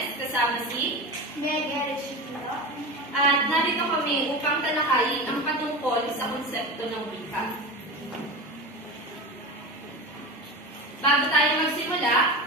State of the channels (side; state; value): both; normal; correlation 0.26